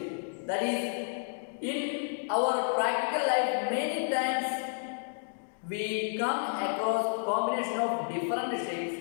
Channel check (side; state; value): right; silent; digital silence